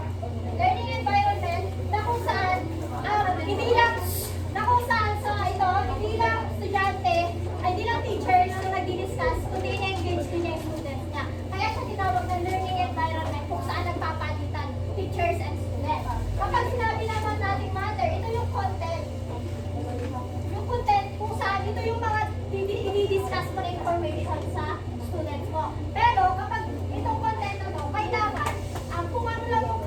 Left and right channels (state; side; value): identical; both; correlation 1.00